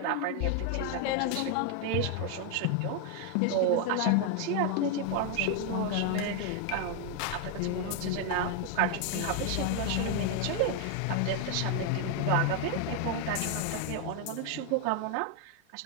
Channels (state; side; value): different; both; correlation 0.01